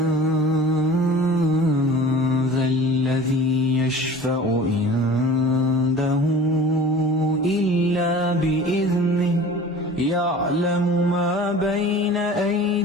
ذا الذي يشفع عنده إلا بإذنه يعلم ما بين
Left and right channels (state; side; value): normal; both; correlation 0.42